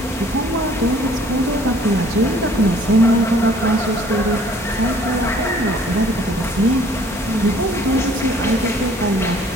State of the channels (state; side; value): normal; both; correlation 0.56